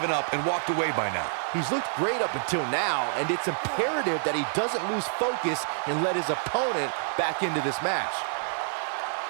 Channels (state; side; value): silent; left; 60 dB below the other